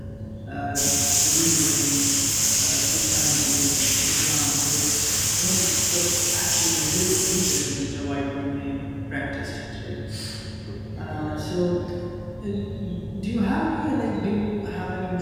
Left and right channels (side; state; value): both; identical; correlation 1.00